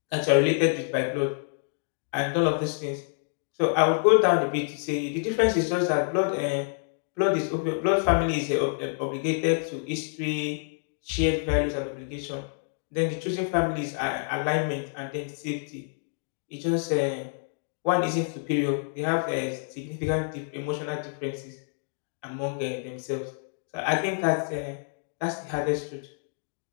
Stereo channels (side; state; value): right; silent; digital silence